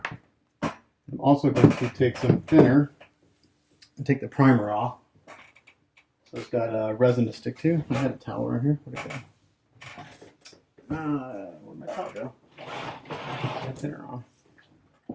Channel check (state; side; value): identical; both; correlation 1.00